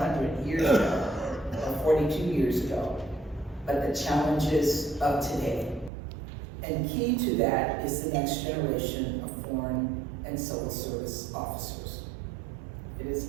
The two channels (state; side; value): drops out; left; at 5.9 s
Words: years ago, or 42 years ago, but the challenges of today. And key to that is the next generation of foreign and civil service officers. It is